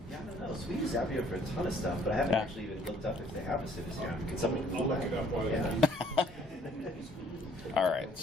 Yeah, I don't know. So we use Zapier for a ton of stuff, but I haven't Yeah. actually even looked up if they have a CiviCRM. Can somebody I'll Google look that? it up while you're Yeah. All right,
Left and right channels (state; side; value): normal; both; correlation 0.60